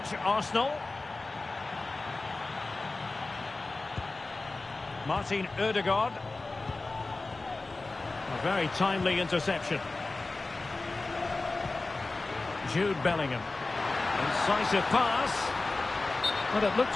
Arsenal. Martin Ødegaard. A very timely interception. Jude Bellingham. Incisive pass. Well, it looked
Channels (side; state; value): right; quieter; 3.4 dB